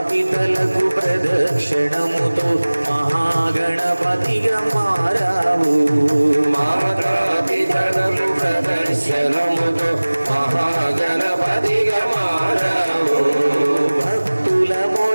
పితలకు ప్రదక్షిణముతో మహాగణపతిగా మారావు। మాతా పితలకు ప్రదక్షిణముతో దిగమారవు భక్తుల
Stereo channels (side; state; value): both; inverted; correlation -1.00